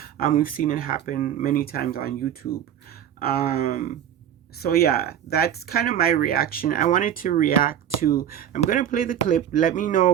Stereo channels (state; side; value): quieter; left; 10.0 dB